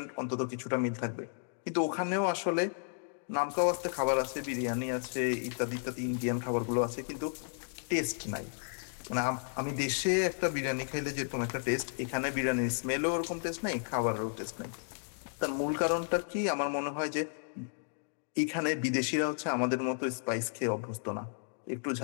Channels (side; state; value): right; silent; digital silence